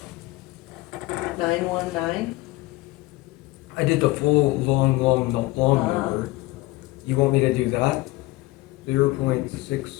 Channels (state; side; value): quieter; right; 19.9 dB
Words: I did the full long number. You want me to do that?